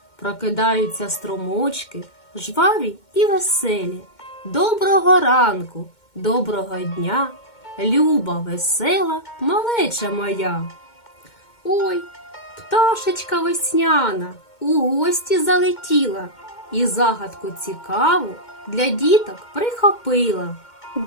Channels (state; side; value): late; right; 2.1 ms